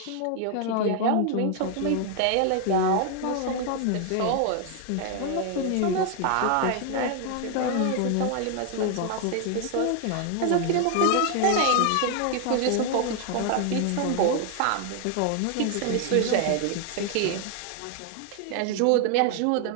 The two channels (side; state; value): both; different; correlation 0.00